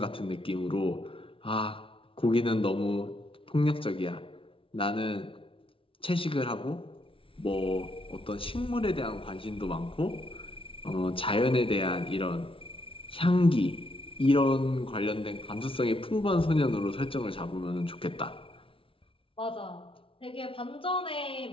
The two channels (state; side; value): late; right; 0.26 ms